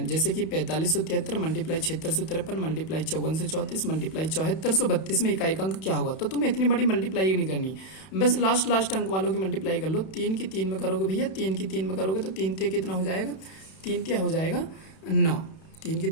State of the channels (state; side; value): late; right; 31 ms